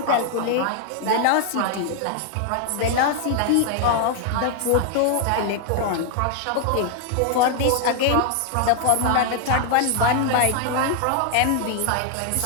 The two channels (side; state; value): both; different; correlation 0.00